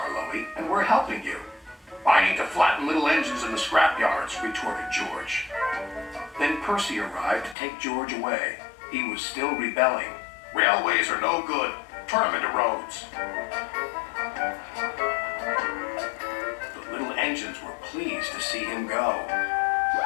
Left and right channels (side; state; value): right; drops out; at 7.6 s